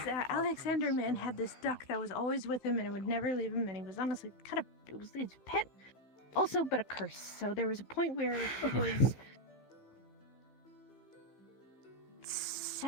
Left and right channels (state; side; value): late; right; 15 ms